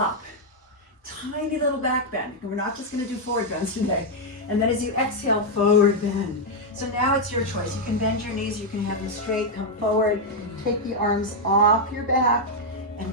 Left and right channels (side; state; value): both; normal; correlation -0.01